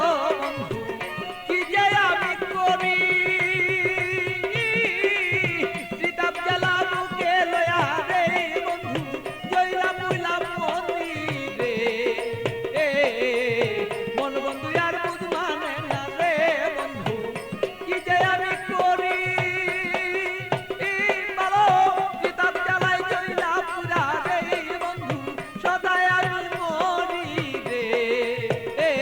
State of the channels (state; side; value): identical; both; correlation 1.00